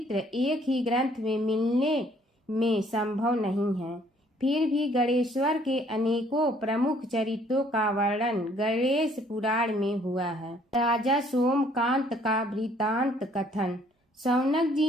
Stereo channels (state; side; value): normal; both; correlation 0.62